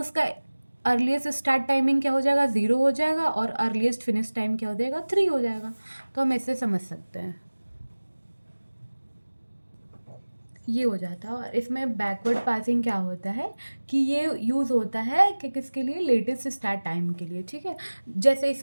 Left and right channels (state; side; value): inverted; both; correlation -1.00